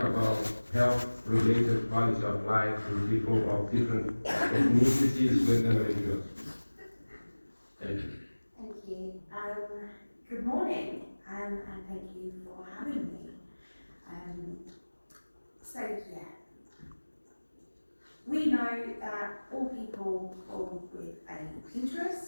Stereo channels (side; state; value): both; inverted; correlation -1.00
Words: health-related quality of life in people of different ethnicities with endometriosis. Thank you. Thank you. Good morning, and thank you for having me. We know that all people born with a